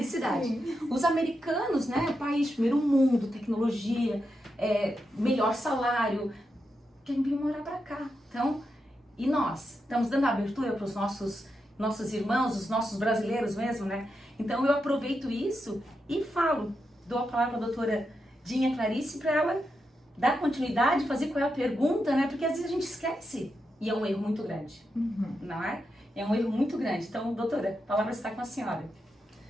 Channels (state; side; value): normal; both; correlation 0.86